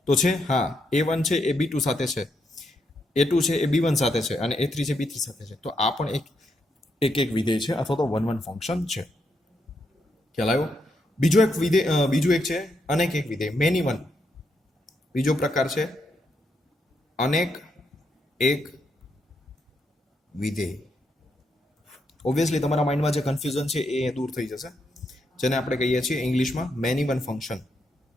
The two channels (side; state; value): both; normal; correlation 0.80